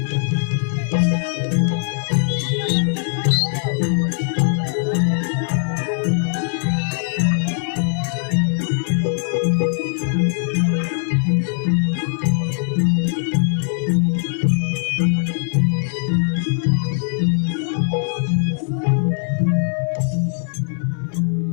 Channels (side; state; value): right; silent; 64 dB below the other